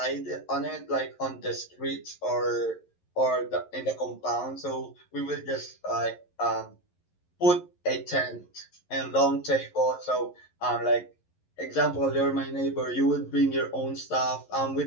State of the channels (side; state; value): right; late; 11 ms